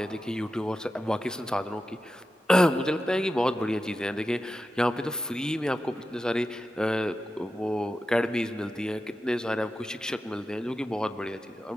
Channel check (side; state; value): both; normal; correlation 0.90